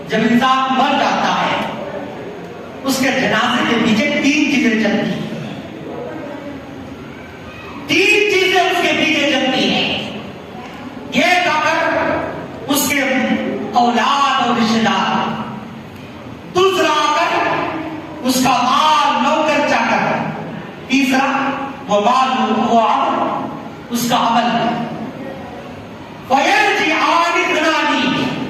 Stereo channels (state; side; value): identical; both; correlation 1.00